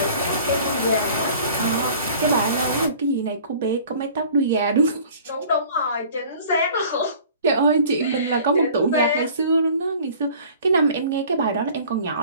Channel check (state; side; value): inverted; both; correlation -0.48